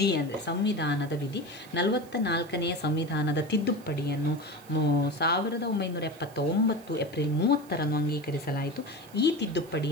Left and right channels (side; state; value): right; noise; hiss, 24 dB below the sound